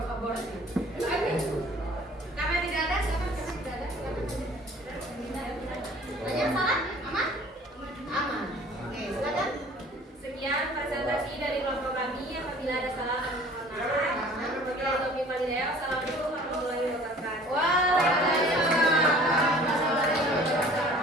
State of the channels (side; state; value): both; normal; correlation 0.49